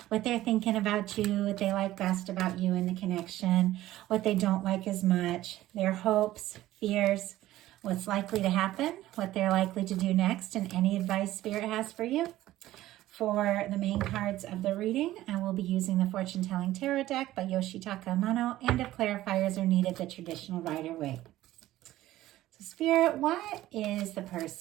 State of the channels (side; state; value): left; quieter; 15.1 dB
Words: What they're thinking about you, what they like best about you in the connection, what they don't like as much, their hopes, fears, what's likely to happen, what they're likely to do next, and any advice Spirit has for you. For the main cards of the reading, I will be using the Fortune Telling Tarot deck by Yoshitaka Amano, and if clarifiers are needed, the traditional Rider-Waite. So Spirit, what is the